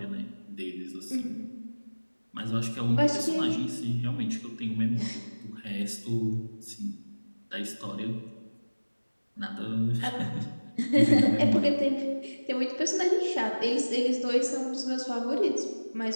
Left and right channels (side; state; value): both; inverted; correlation -1.00